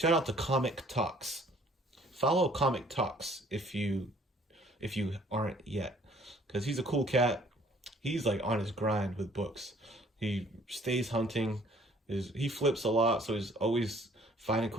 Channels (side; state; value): both; normal; correlation 0.57